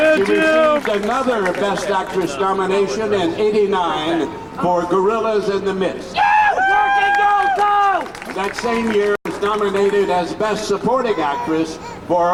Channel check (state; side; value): identical; both; correlation 1.00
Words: another Best Actress nomination in '89 for Gorillas in the Mist. that same year was nominated as Best Supporting Actress